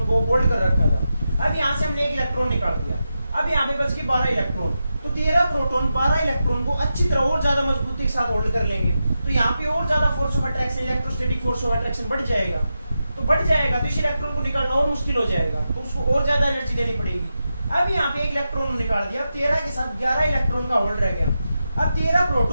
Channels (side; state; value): both; inverted; correlation -0.89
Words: को होल्ड कर रखा था। अब यहाँ से हमने 1 इलेक्ट्रॉन निकाल दिया, अब यहाँ पे बच गए 12 इलेक्ट्रॉन। तो 13 प्रोटॉन 12 इलेक्ट्रॉन को अच्छी तरह और ज्यादा मजबूती के साथ होल्ड कर लेंगे, तो यहाँ पे और ज्यादा force of attraction, electrostatic force of attraction बढ़ जाएगा। तो बढ़ जाएगा तो इस इलेक्ट्रॉन को निकालना और मुश्किल हो जाएगा, तो उसको और ज्यादा एनर्जी देनी पड़ेगी। अब यहाँ पे 1 इलेक्ट्रॉन निकाल दिया, 13 के साथ 11 इलेक्ट्रॉन का होल्ड रह गया। अब 13